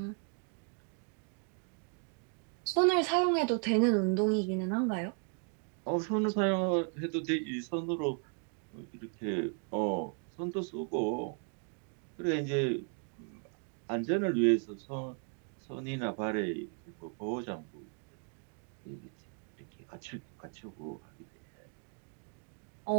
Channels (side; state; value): left; quieter; 38.7 dB